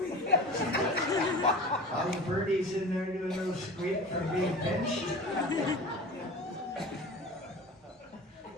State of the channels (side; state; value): both; normal; correlation 0.36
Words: All the birdies in there doing a little squeak from being pinched.